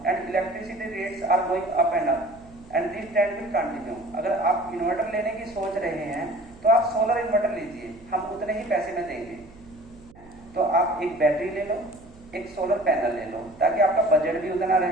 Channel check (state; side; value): noise; right; hum, 22 dB below the sound